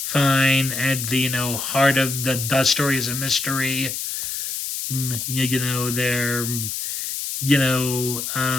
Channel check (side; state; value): left; noise; hiss, 4 dB below the sound